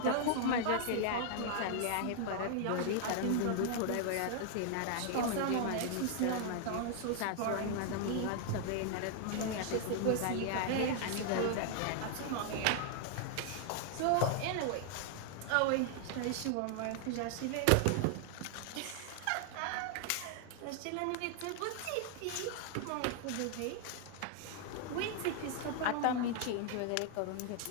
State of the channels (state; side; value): different; both; correlation 0.00